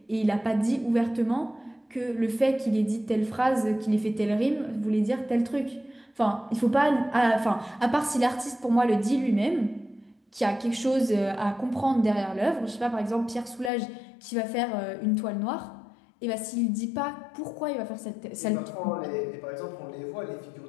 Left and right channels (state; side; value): drops out; right; at 13.7 s